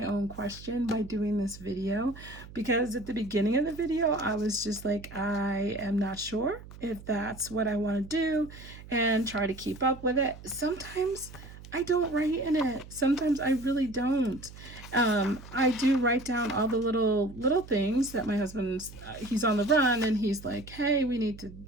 own question by doing this video, because at the beginning of the video, I was just like, I am not sure if that's what I want to do and try to keep up with it. Sometimes I don't write in it. Sometimes I really don't. I do write down all the little things that my husband's, he's on the run and he's like, hey, we need to,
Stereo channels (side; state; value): right; noise; hum, 17 dB below the sound